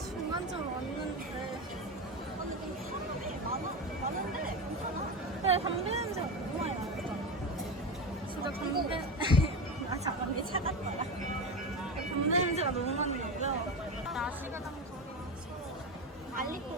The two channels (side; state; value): both; normal; correlation 0.21